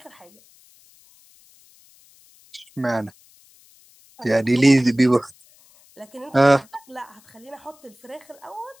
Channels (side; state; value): left; noise; hiss, 28 dB below the sound